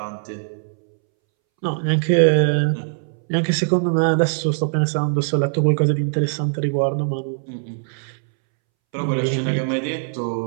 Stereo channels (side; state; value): left; silent; 64 dB below the other